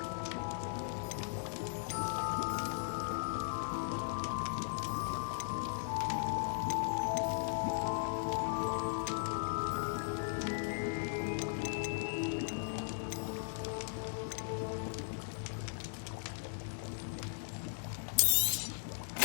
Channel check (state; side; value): silent; right; digital silence